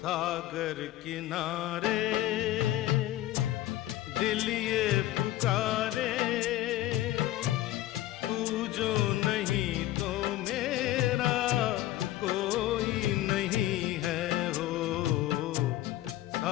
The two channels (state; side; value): quieter; right; 15.2 dB